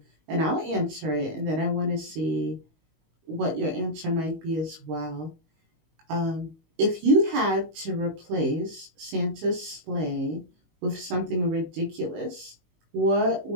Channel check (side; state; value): left; late; 19 ms